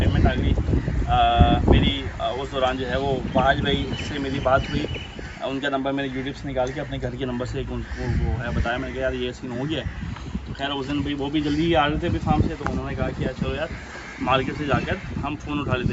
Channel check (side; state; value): both; identical; correlation 1.00